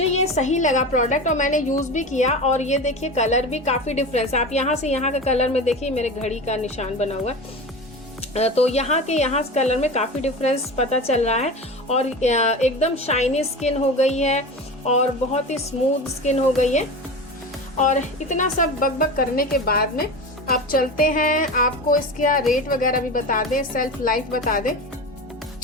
ये सही लगा प्रोडक्ट और मैंने यूज भी किया। और ये देखिए कलर भी काफी डिफरेंस, आप यहाँ से यहाँ का कलर में देखिए, मेरे घड़ी का निशान बना हुआ है, तो यहाँ के यहाँ कलर में काफी डिफरेंस पता चल रहा है। और एकदम शाइनी स्किन हो गई है और बहुत ही स्मूथ स्किन हो गई है। और इतना सब बकबक करने के बाद में अब चलते हैं, आपको इसका रेट वगैरह भी बता दें, सेल्फ लाइफ बता दें।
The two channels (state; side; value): normal; both; correlation 0.28